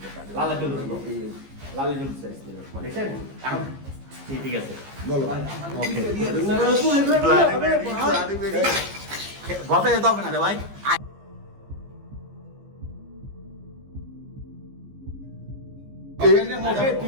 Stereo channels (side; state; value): left; late; 15 ms